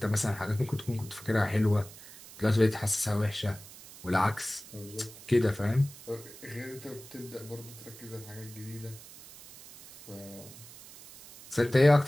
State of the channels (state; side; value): noise; right; hiss, 18 dB below the sound